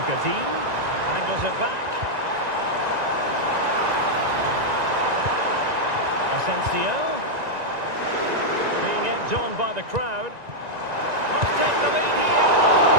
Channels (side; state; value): left; late; 1.9 ms